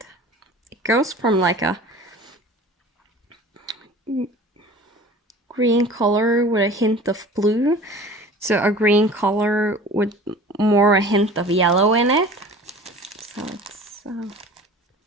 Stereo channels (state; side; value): normal; both; correlation 0.42